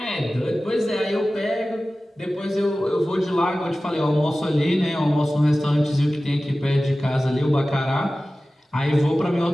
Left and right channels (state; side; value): normal; both; correlation 0.96